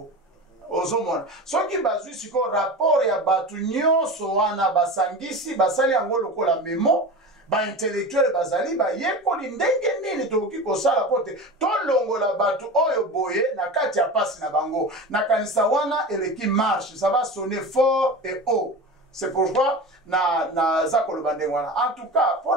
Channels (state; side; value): normal; both; correlation 0.30